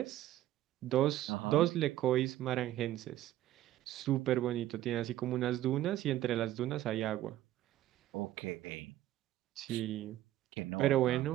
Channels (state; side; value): quieter; left; 13.9 dB